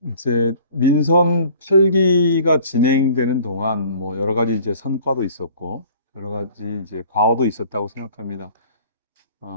이제 민선 8기가 진행되는 동안 여러 가지 이제 성과도 있었고 여러 가지 이제 과오도 있었다고 생각합니다.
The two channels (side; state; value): both; inverted; correlation -0.50